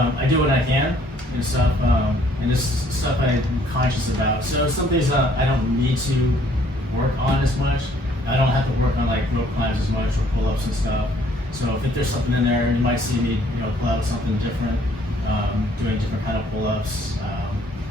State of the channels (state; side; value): normal; both; correlation 0.62